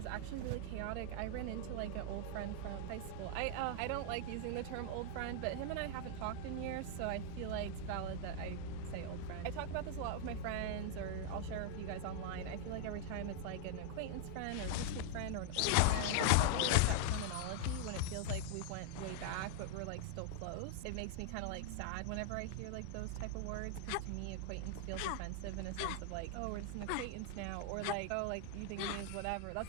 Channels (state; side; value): different; both; correlation -0.01